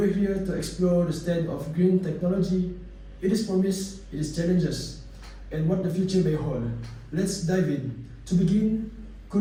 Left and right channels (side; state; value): both; identical; correlation 1.00